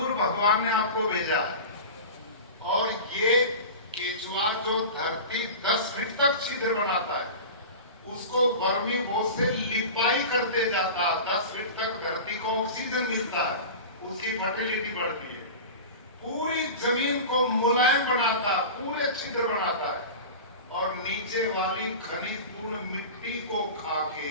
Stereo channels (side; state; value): both; inverted; correlation -0.32